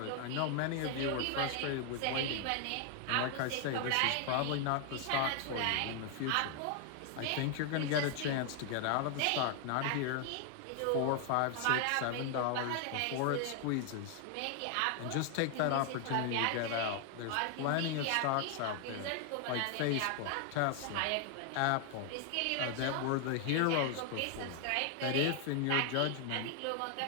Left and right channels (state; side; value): different; both; correlation 0.00